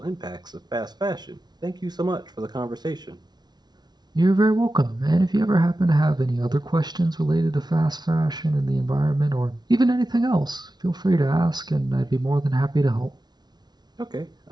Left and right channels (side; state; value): left; late; 0.20 ms